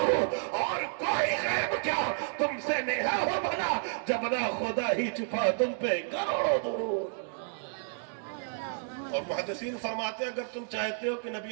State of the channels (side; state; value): left; silent; digital silence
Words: और कोई गैब क्या तुमसे नेहा हो भला जब ना खुदा ही छुपा तुम पे करोड़ों दुरूद। और मुहद्दिसीन फरमाते हैं अगर तुम चाहते हो कि